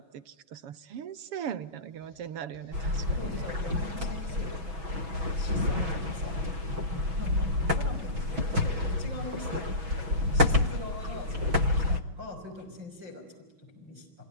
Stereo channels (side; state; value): left; late; 6.1 ms